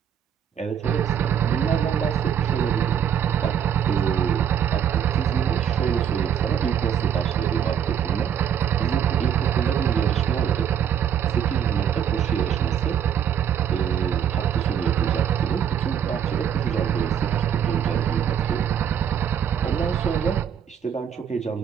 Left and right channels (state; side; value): quieter; left; 8.8 dB